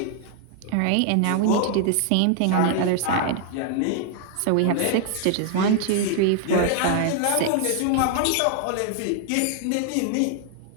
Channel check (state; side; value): different; both; correlation 0.00